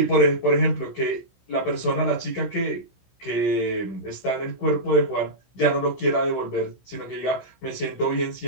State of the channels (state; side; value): late; right; 16 ms